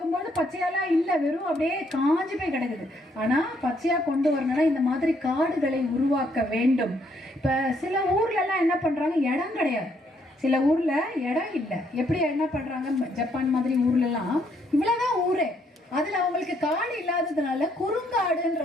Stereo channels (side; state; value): both; normal; correlation 0.71